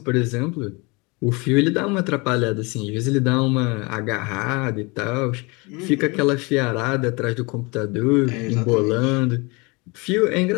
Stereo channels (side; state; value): right; quieter; 27.4 dB